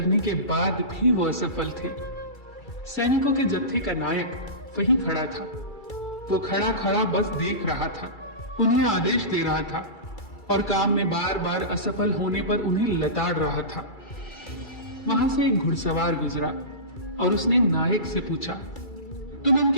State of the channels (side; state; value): right; late; 2.3 ms